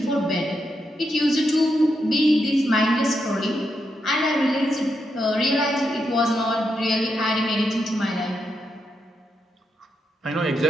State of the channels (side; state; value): both; normal; correlation 0.83